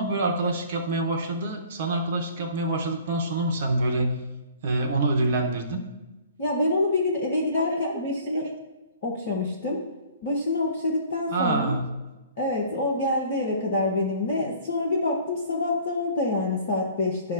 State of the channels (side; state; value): both; inverted; correlation -0.51